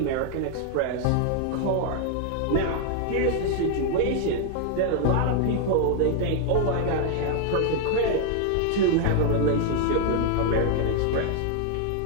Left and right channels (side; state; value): both; different; correlation 0.00